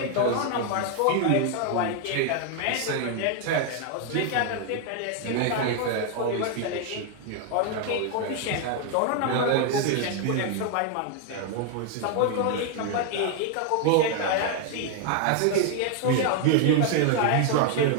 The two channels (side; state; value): both; different; correlation 0.00